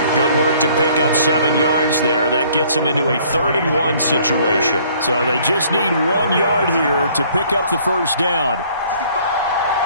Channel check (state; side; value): inverted; both; correlation -0.58